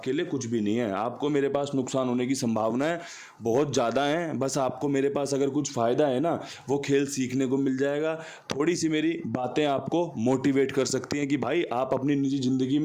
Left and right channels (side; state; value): both; identical; correlation 1.00